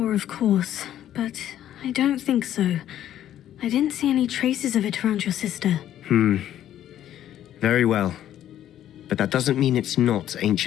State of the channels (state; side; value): quieter; right; 11.6 dB